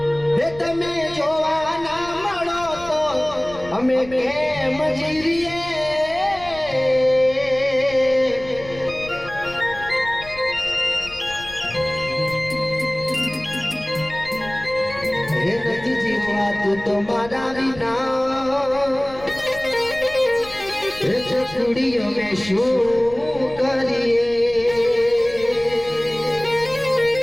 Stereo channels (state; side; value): noise; left; rumble, 18 dB below the sound